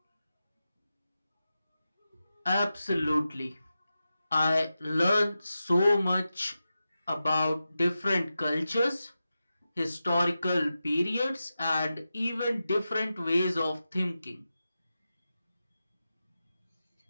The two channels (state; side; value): inverted; both; correlation -0.92